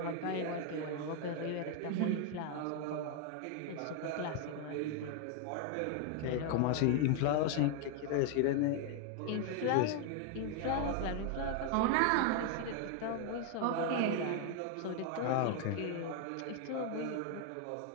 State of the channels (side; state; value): both; different; correlation 0.00